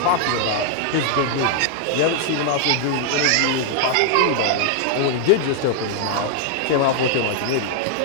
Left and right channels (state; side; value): different; both; correlation 0.00